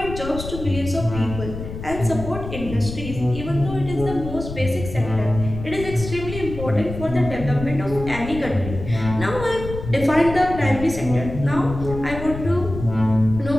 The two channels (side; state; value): left; noise; rumble, 9 dB below the sound